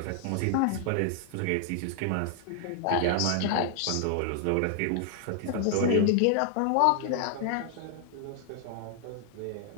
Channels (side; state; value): both; different; correlation 0.00